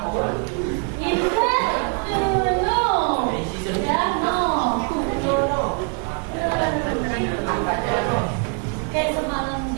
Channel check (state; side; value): quieter; left; 38.4 dB